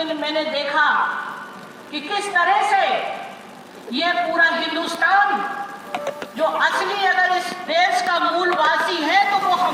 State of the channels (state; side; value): identical; both; correlation 1.00